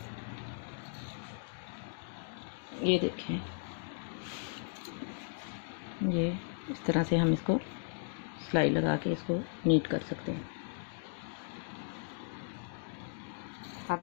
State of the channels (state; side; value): silent; right; digital silence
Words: ये देखें, ये इस तरह से हम इसको सिलाई लगा के इसको नीट कर सकते हैं। अब